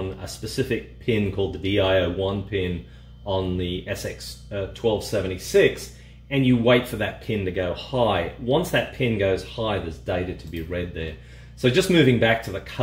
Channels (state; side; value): identical; both; correlation 1.00